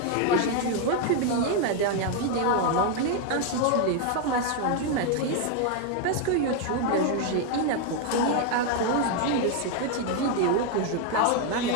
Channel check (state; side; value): different; both; correlation 0.01